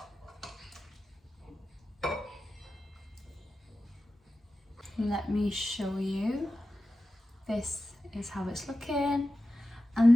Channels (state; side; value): normal; both; correlation 0.93